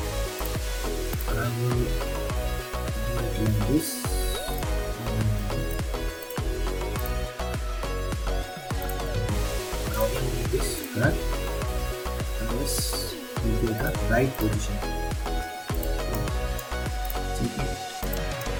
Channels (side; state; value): both; identical; correlation 1.00